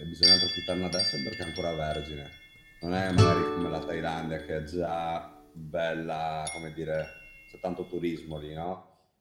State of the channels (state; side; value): identical; both; correlation 1.00